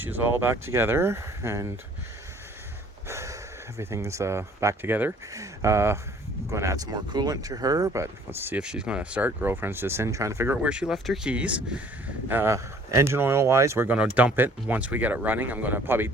all back together, and everything's back together. Going to add some more coolant to her, but let's see if she's going to start. Girlfriend's just in trying to figure out where she left her keys. Engine oil wise, we're going to dump it once we get it running. I'm going to probably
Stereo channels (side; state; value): both; normal; correlation 0.56